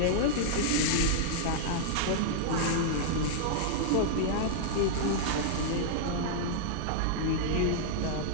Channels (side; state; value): both; different; correlation -0.01